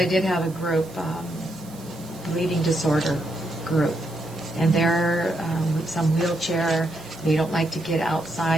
did have a group, bleeding disorder group, and they're some wheelchair. They don't like to get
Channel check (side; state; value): right; noise; hiss, 21 dB below the sound